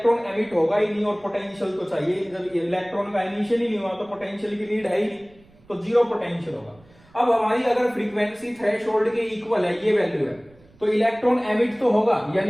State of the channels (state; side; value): noise; right; rumble, 28 dB below the sound